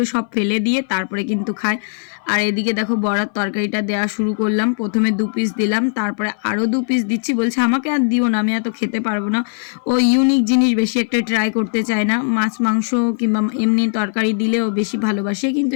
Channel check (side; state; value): right; silent; 61 dB below the other